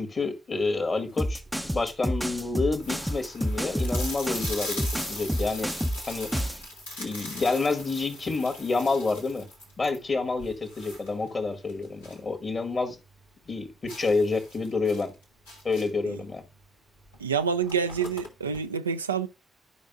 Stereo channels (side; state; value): both; normal; correlation 0.72